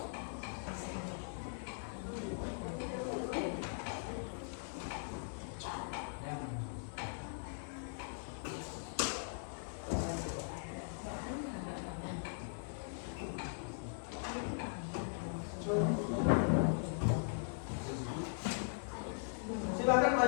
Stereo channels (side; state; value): right; silent; digital silence